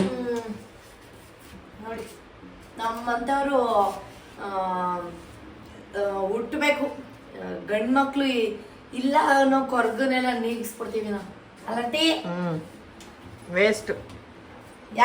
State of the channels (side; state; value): both; identical; correlation 1.00